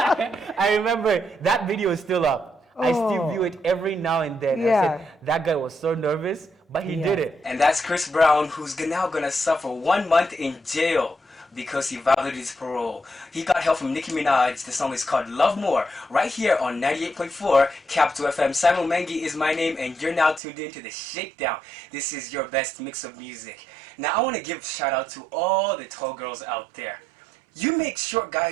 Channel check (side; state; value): left; drops out; at 20.4 s